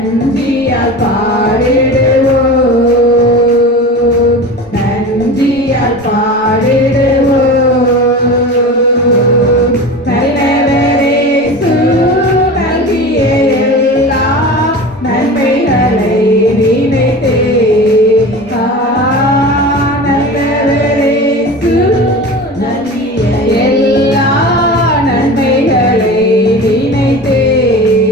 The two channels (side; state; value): both; normal; correlation 0.32